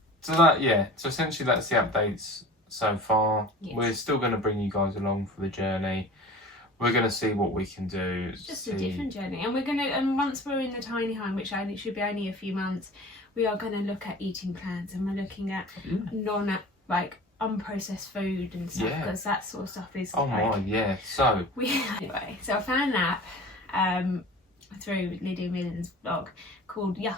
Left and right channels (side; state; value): both; normal; correlation 0.40